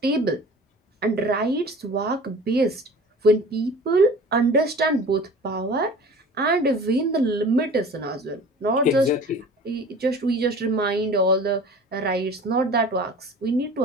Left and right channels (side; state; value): both; normal; correlation 0.42